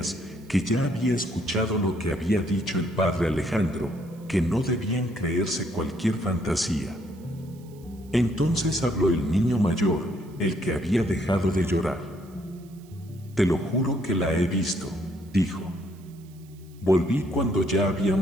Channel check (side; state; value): right; noise; hiss, 28 dB below the sound